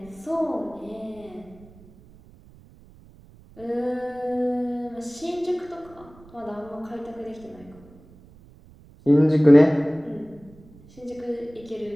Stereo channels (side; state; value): right; noise; rumble, 24 dB below the sound